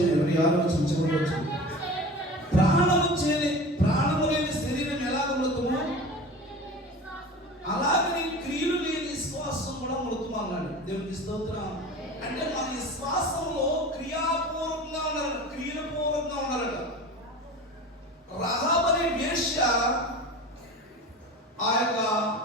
26వ వచనం, చివరి వచనం. ప్రాణము లేని శరీరం ఎలాగ మృతమో అలాగే క్రియలు లేని విశ్వాసం కూడా మృతము అన్నాడు. దేవునికి స్తోత్రం. అంటే మన విశ్వాసంలో క్రియాపూర్వకంగా ఉన్నారు, క్రియపూర్వకంగా ఉన్నారట. రహాబు అనే వేశ్య ఆ యొక్క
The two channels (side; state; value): both; normal; correlation 0.35